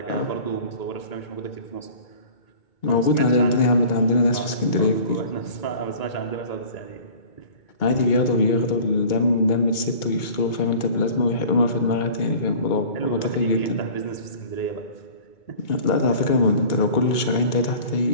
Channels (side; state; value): right; late; 2.2 ms